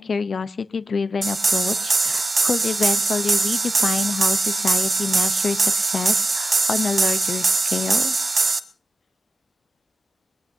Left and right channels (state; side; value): normal; both; correlation 0.91